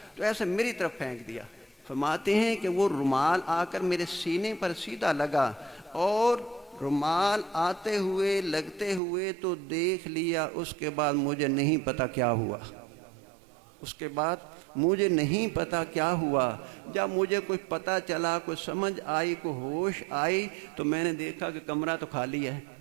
تو ایسے میری طرف پھینک دیا۔ فرماتے ہیں کہ وہ رومال آ کر میرے سینے پر سیدھا لگا، اور رومال آتے ہوئے لگتے ہوئے تو دیکھ لیا، اس کے بعد مجھے نہیں پتا کیا ہوا، جب مجھے کوئی پتہ چلا، کوئی سمجھ آئی، کوئی ہوش آئی، تو میں نے دیکھا کہ کمرہ تو خالی ہے،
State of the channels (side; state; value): left; drops out; at 9.0 s